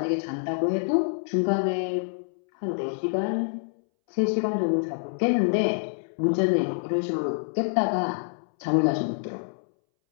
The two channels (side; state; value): right; silent; 61 dB below the other